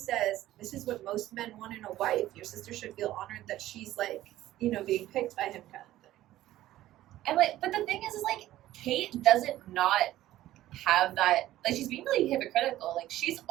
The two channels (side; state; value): left; quieter; 14.5 dB